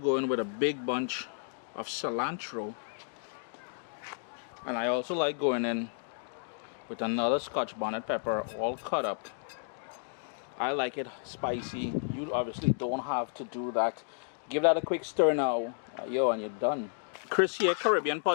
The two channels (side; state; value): right; silent; digital silence